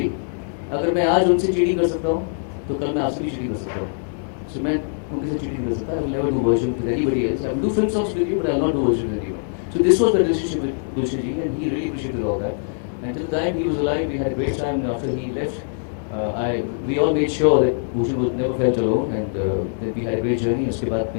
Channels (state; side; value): silent; right; digital silence